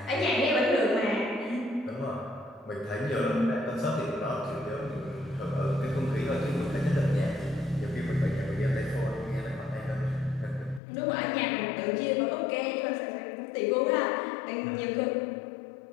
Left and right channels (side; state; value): right; drops out; at 10.8 s